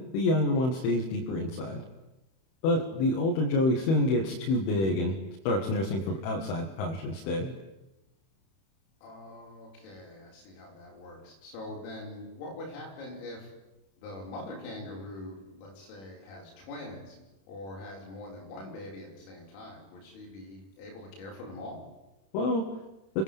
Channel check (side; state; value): right; late; 31 ms